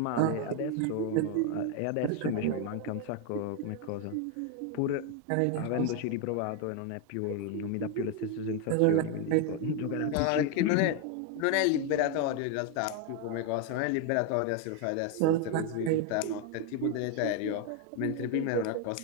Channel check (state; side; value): different; both; correlation 0.01